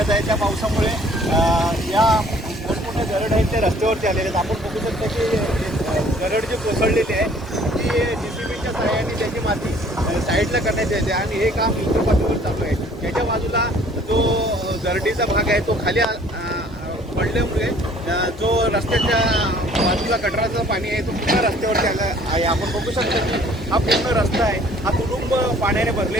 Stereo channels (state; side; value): normal; both; correlation 0.56